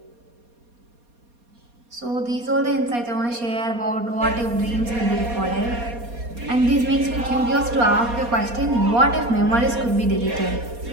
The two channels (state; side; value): late; left; 4.2 ms